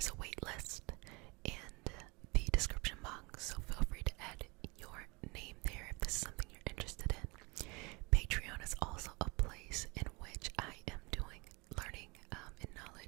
a wait list in the description box. So feel free to add your name there if this is something you're interested in. Patreon is also a place in which I am doing learning and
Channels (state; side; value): quieter; left; 27.6 dB